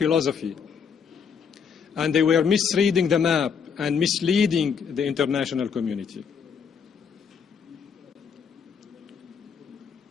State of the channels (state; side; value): quieter; right; 6.6 dB